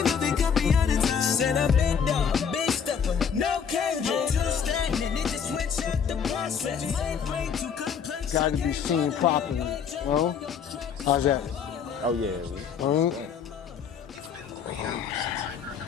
Said I'm big dog, big stepper, no cage. Two standing, it just switch out the process. Got to be seen properly. Well, how's that? Oh, yeah.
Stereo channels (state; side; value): quieter; right; 7.1 dB